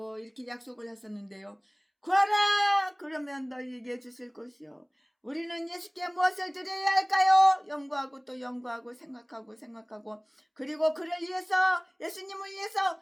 이렇게 약속을 하셨는데요. 구하라 그러면 너희에게 주실 것이요. 우리는 예수께 무엇을 드려야 할까요? 연구하고 또 연구하고 생각하고 그리고 그를 위해서 예수님을 위해서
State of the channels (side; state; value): both; identical; correlation 1.00